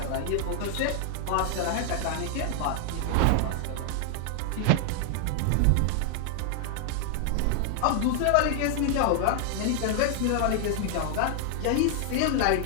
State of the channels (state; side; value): different; both; correlation 0.00